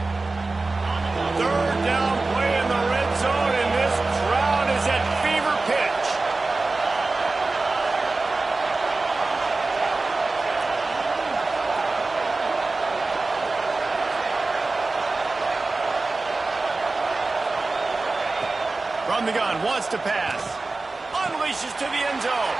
3rd down play in the red zone, and this crowd is at fever pitch. From the gun, wants to pass. Unleashes to the end zone.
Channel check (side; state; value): left; quieter; 3.5 dB